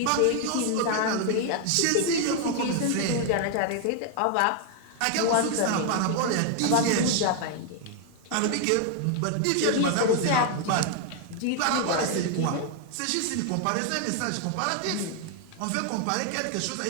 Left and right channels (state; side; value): different; both; correlation 0.00